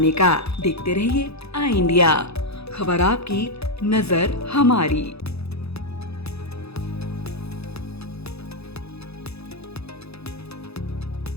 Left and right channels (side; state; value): right; late; 0.79 ms